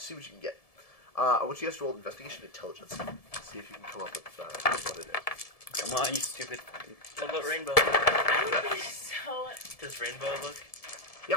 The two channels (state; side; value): late; right; 1.7 ms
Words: what you can get. I want you guys to roll investigation intelligence. See if you can come up with what it is. Come on, you stupid. What about Rainbow? I would be so. Does Rainbow look? Yep.